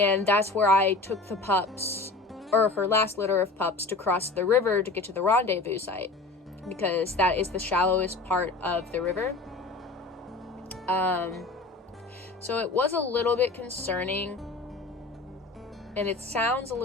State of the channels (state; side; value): quieter; right; 3.4 dB